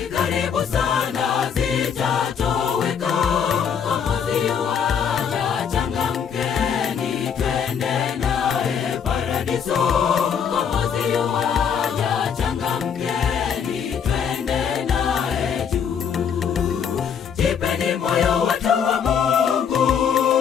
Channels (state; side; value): quieter; right; 7.4 dB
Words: karibu sana zitatoweka. Mkombozi yuaja, changamkeni, twende naye paradiso. Mkombozi yuaja, changamkeni, twende naye juu. Jipeni moyo watu wa Mungu,